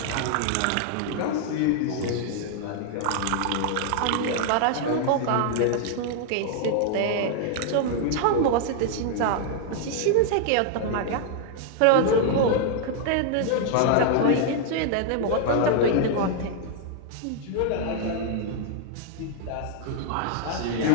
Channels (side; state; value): both; different; correlation 0.00